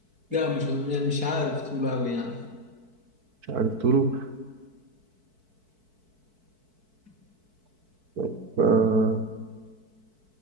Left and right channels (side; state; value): left; late; 4.6 ms